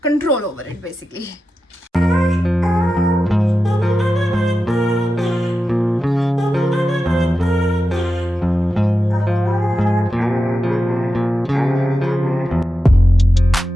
over it, basically.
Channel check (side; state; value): both; normal; correlation 0.91